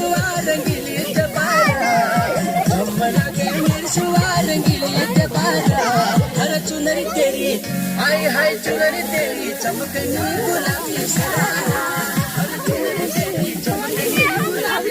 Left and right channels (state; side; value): identical; both; correlation 1.00